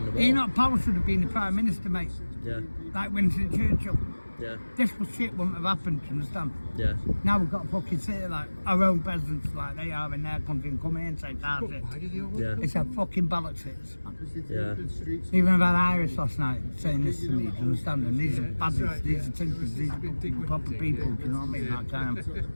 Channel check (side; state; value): both; inverted; correlation -1.00